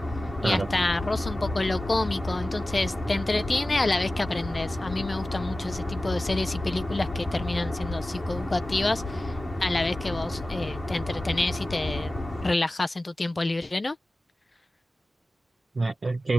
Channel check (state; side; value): normal; both; correlation 0.96